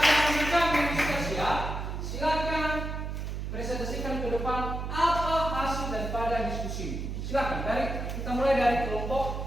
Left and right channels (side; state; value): right; noise; hum, 5 dB below the sound